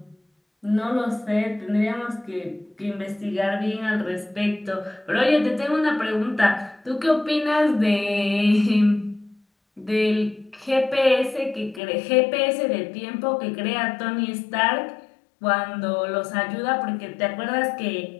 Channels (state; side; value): drops out; right; at 11.8 s